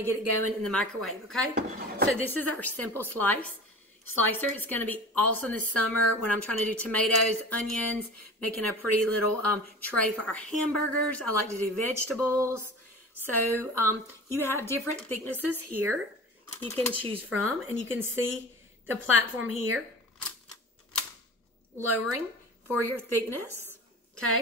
get it going in the microwave, okay? So this is our simple slicer. It's going to be awesome this summer when I'm trying to do tomatoes, onions, making a pretty little tray for our hamburgers. I like to do vegetables. So you have different thicknesses here you can choose from, and you can see the platform here lowering for your thickness,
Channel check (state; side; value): normal; both; correlation 0.37